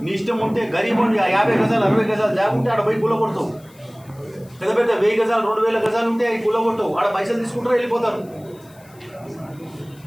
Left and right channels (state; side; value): noise; left; hiss, 28 dB below the sound